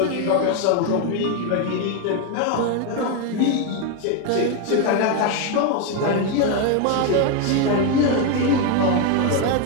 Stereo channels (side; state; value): both; different; correlation 0.02